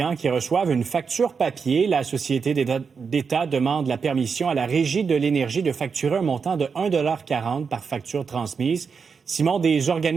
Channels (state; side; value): quieter; left; 5.7 dB